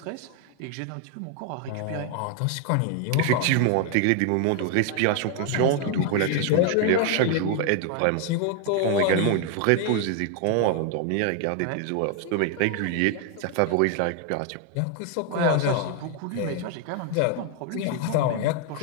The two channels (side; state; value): both; different; correlation 0.01